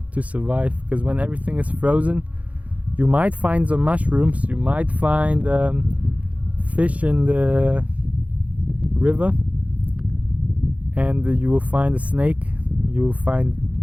to survive. Because when everything is frozen, you might find some mushrooms, you might find fish in the river, and you will find a snake, you will find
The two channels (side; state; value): left; late; 0.068 ms